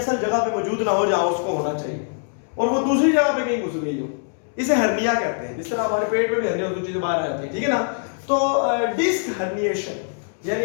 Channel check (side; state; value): right; silent; 64 dB below the other